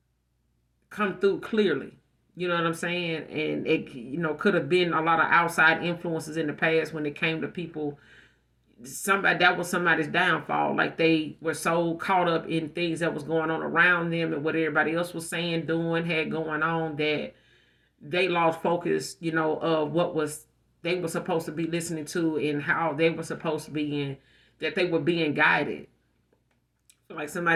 come through clearly. You know what I'm saying? And it, could have been a lot of outside influences in the past when it came to people. That was somebody's downfall. Like they were so caught up in things that was going on around them and what everybody else was saying, doing, had going on, that they lost focus, of what was they were supposed to be listening to and how they were supposed to be in, that they were being guided. Like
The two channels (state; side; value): identical; both; correlation 1.00